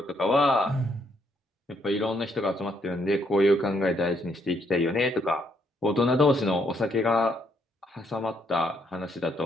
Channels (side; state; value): both; normal; correlation 0.73